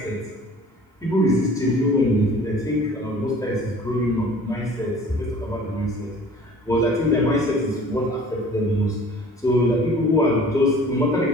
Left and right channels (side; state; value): both; normal; correlation 0.48